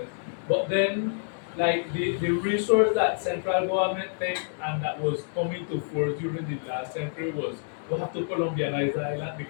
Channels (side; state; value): right; silent; 60 dB below the other